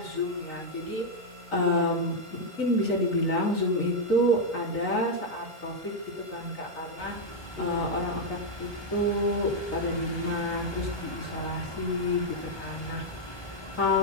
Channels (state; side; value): late; right; 1.2 ms